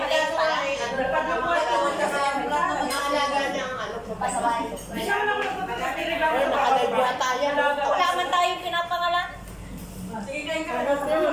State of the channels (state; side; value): identical; both; correlation 1.00